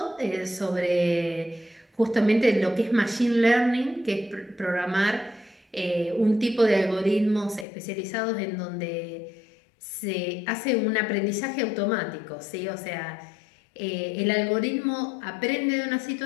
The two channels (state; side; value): drops out; right; at 7.7 s